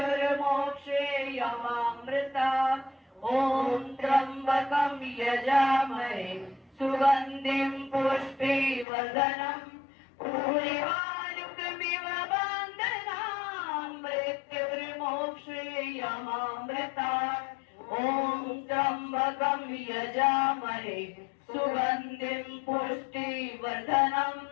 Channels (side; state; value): right; drops out; at 8.8 s